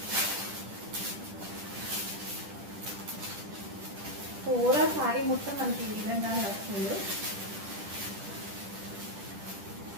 పూరా సారీ మొత్తం మనకి ఈ విధంగానే వస్తుంది.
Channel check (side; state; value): left; late; 10 ms